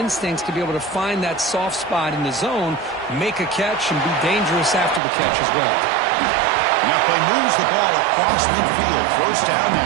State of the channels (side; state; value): left; drops out; at 5.0 s